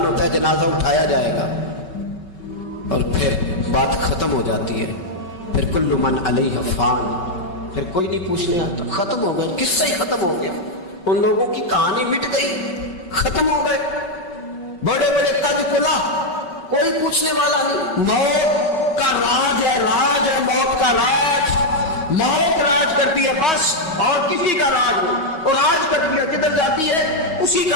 ہوتا ہے جنازہ اٹھایا جائے گا, اور پھر بات ختم ہو جاتی ہے. پھر کل من علیہ فان, پھر کوئی نہیں پوچھنے آتا. ختم ہو گئے, قصہ ہی ختم ہو گیا. ان لوگوں کی کہانی مٹ گئی, ختم ہو گئے. بڑے بڑے تاج کلا, کوئی پوچھنے والا نہیں. موت کا راج ہے, موت کا راج. موت راج کرتی ہے بس, اور کسی کا راج نہیں. اور راج کرتی ہے, جدھر جاتی ہے اسی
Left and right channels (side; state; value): right; late; 5.3 ms